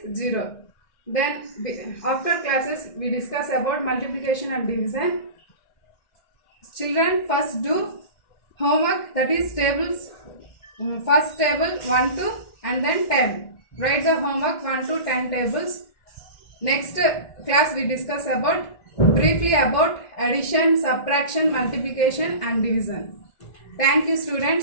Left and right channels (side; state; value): right; late; 2.1 ms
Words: 0. Then after classes we discuss about multiplication and division. Children first do homework, that is tables. First table 1 to and then 10. Write the homework 1 to 10 tables. Next class we discuss about briefly about addition, subtraction, multiplication and division. Thank you